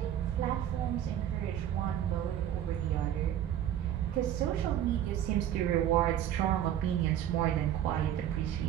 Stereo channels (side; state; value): left; quieter; 11.0 dB